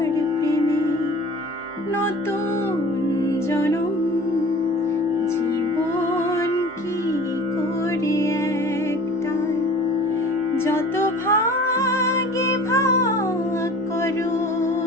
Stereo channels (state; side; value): normal; both; correlation 0.43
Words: প্রেমে নতুন জনম, জীবন কি করে একটাই। যত ভাগে ভাগ করো